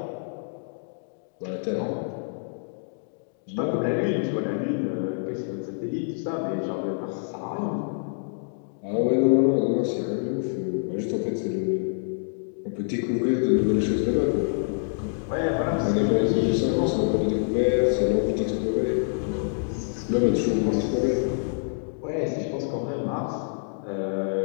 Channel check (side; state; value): right; silent; digital silence